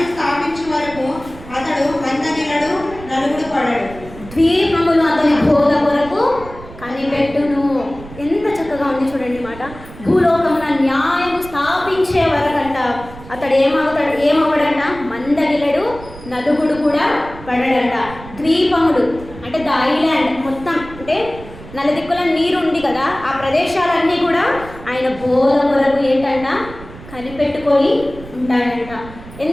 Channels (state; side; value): noise; right; rumble, 16 dB below the sound